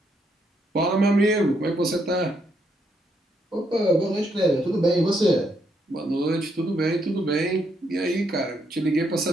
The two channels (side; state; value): both; normal; correlation 0.75